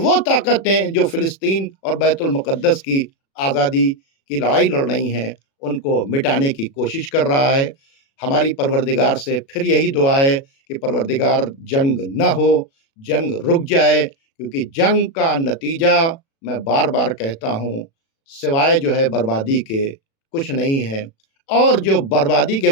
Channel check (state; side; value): late; right; 36 ms